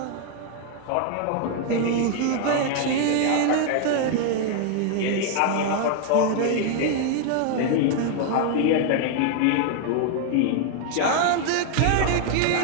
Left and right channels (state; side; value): different; both; correlation 0.00